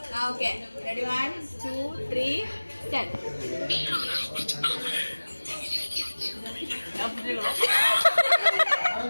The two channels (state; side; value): inverted; both; correlation -1.00